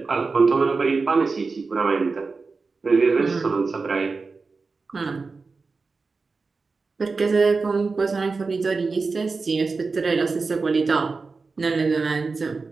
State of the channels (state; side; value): quieter; left; 4.3 dB